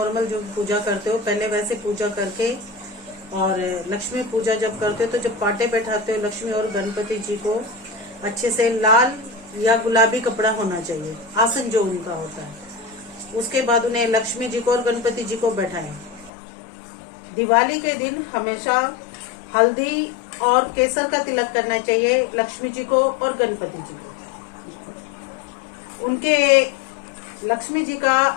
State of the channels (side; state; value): right; drops out; at 16.3 s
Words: जो पूजा करते हो पहले वैसे पूजा करके, और लक्ष्मी पूजा जब करते हो तो जब पाटे बैठाते हो लक्ष्मी और गणपति जी को, अच्छे से लाल या गुलाबी कपड़ा होना चाहिए, आसन जो उनका होता है। उसके बाद उन्हें लक्ष्मी जी को और गणपति जी को बैठाएं। दिवाली के दिन हमेशा हल्दी और केसर का तिलक करना चाहिए लक्ष्मी जी को और गणपति जी को। उनके लक्ष्मी जी का